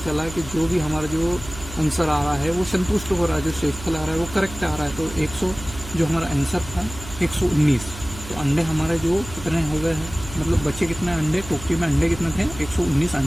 चला कि जो भी हमारा जो आंसर आ रहा है वो संतुष्ट हो रहा है, जो शेषफल आ रहा है वो करेक्ट आ रहा है। तो 100 जो हमारा आंसर था 119। तो अंडे हमारे जो कितने हो गए हैं, मतलब बच्चे कितने अंडे, टोकरी में अंडे कितने थे, 119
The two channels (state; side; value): noise; right; hum, 13 dB below the sound